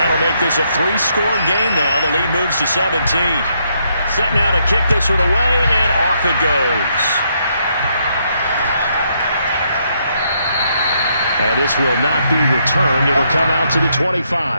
make this a 3-score game now. The lead moves to 17. Set now to kick this one away, and off it goes. And this will not be returned. It'll come out to the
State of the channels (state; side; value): inverted; both; correlation -0.75